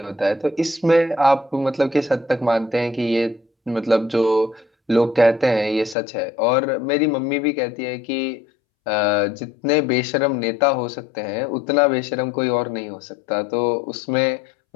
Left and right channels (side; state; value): right; drops out; at 6.0 s